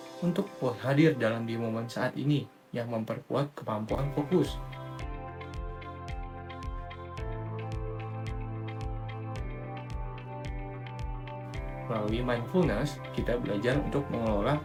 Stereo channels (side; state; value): both; identical; correlation 1.00